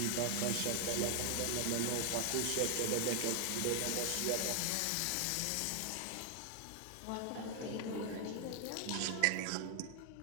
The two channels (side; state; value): both; different; correlation 0.00